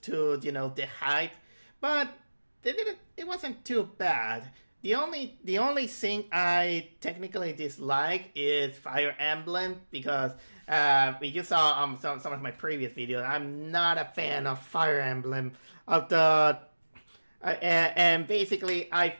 to, the hype, but it wasn't too bad. The only thing I technically dislike is Fire Emblem because you saw some of my previous videos. I'm not a fan of Fire Emblem and basically I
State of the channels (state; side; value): inverted; both; correlation -1.00